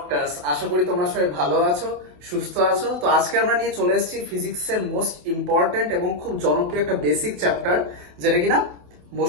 আশা করি তোমরা সবাই ভালো আছো, সুস্থ আছো। তো আজকে আমরা নিয়ে চলে এসেছি ফিজিক্সের মোস্ট ইম্পর্টেন্ট এবং খুব জনপ্রিয় একটা বেসিক চ্যাপ্টার, যেটা কিনা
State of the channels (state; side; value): late; left; 28 ms